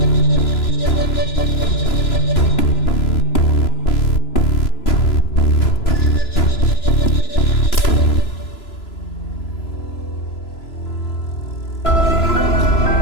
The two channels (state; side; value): late; right; 3.0 ms